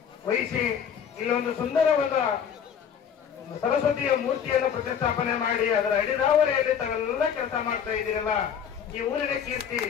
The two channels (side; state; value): right; quieter; 7.9 dB